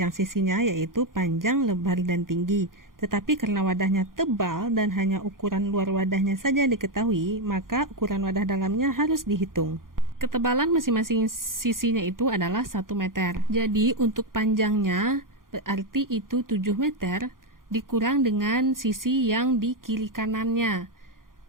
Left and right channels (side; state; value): left; late; 0.91 ms